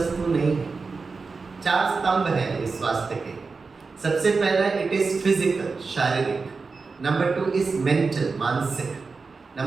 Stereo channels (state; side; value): quieter; left; 4.4 dB